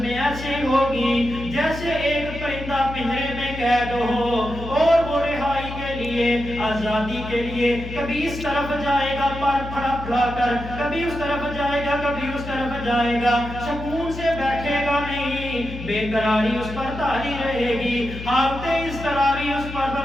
میں ایسی ہوگی جیسے ایک پرندہ پنجرے میں قید ہو اور وہ رہائی کے لیے لیے، آزادی کے لیے، کبھی اس طرف جائے گا پر پھڑا پھڑا کر، کبھی اس طرف جائے گا، کبھی اس طرف جائے گا، سکون سے بیٹھے گا نہیں، بے قراری اس پر طاری رہے گی، حالت اضطراری اس پر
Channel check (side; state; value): left; noise; hum, 10 dB below the sound